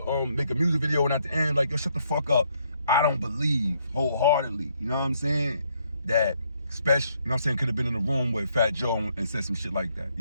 make a music video and at the end, like, yo, shut the fuck up. I don't believe wholeheartedly, you know what I'm saying, that Spesh, you know what I'm saying, could have been in the room with Fat Joe and said some shit like that.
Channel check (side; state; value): both; inverted; correlation -0.72